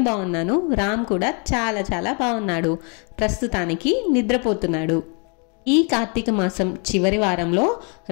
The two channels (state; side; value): quieter; right; 36.1 dB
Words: బాగున్నాను. రామ్ కూడా చాలా బాగున్నాడు. ప్రస్తుతానికి నిద్రపోతున్నాడు. ఈ కార్తీక మాసం చివరి వారంలో